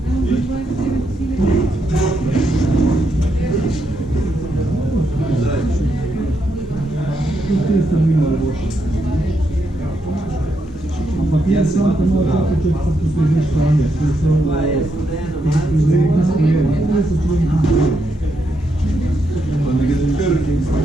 Tu ste mi malo boljši. Ampak jaz sam te malo topiček pa tu težne stranje. To so izredni sprejeni. To so človeki sprejeni. Pa ne gre trki.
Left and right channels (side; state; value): both; normal; correlation 0.79